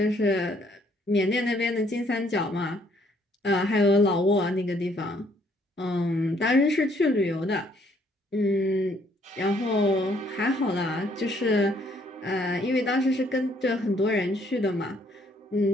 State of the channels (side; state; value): both; normal; correlation 0.66